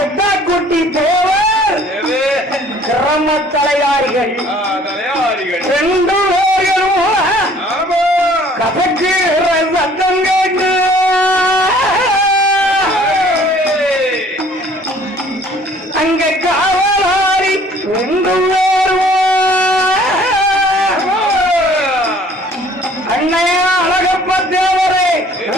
குட்டி தேவர். கிராம தலையாரிகள் 2 பேர்களும் கசக்குற சத்தம் கேட்டு அங்க காவலாரி 2 பேரும் அண்ணையா அழகப்ப தேவரே,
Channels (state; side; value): normal; both; correlation 0.55